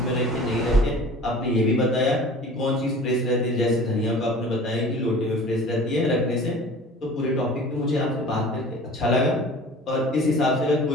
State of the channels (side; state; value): both; normal; correlation 0.43